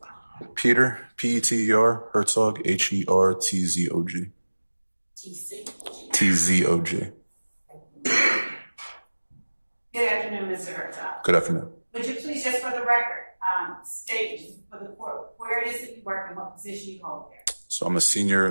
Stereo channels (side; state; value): both; inverted; correlation -1.00